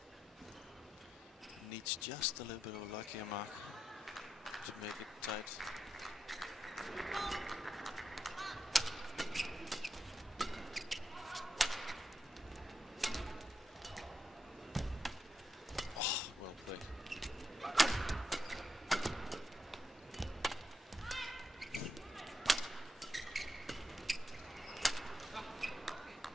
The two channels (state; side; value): normal; both; correlation 0.84